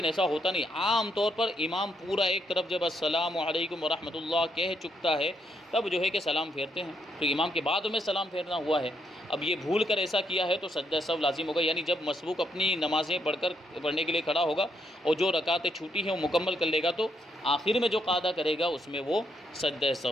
ایسا ہوتا نہیں، عام طور پر امام پورا ایک طرف جب السلام علیکم ورحمۃ اللہ کہہ چکتا ہے تب جو ہے کہ سلام پھیرتے ہیں، تو امام کے بعد میں سلام پھیرنا ہوا ہے۔ اب یہ بھول کر ایسا کیا ہے تو سجدہ سہو لازم ہوگا، یعنی جب مسبوق اپنی نمازیں پڑھنے کے لیے کھڑا ہوگا اور جو رکعتیں چھوٹی ہیں وہ مکمل کر لے گا تو آخر میں جو قاعدہ کرے گا اس میں وہ سجدہ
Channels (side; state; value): both; normal; correlation 0.76